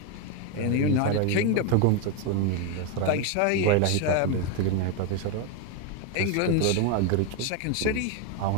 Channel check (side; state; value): both; different; correlation 0.02